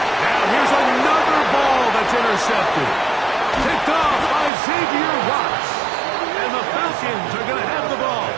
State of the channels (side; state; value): left; drops out; at 4.5 s